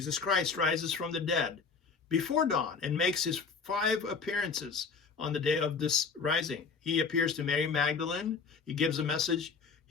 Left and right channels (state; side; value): quieter; right; 5.1 dB